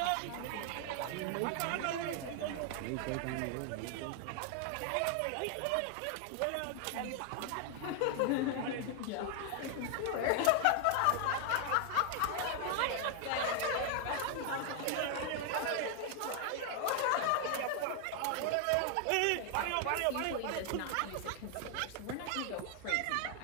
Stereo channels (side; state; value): both; different; correlation 0.00